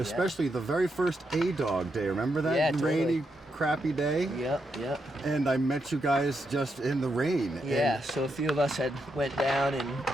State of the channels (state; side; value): normal; both; correlation 0.82